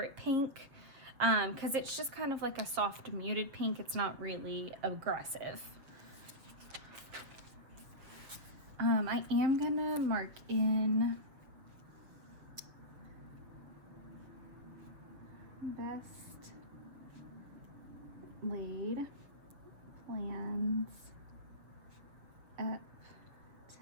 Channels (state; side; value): late; left; 7.1 ms